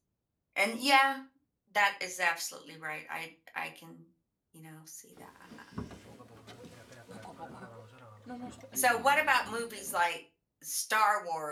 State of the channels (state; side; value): identical; both; correlation 1.00